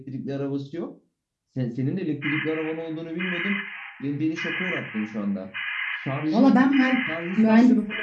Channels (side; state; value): both; identical; correlation 1.00